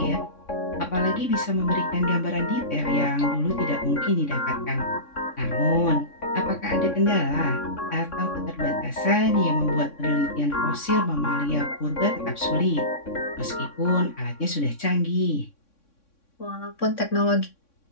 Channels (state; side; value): late; right; 3.6 ms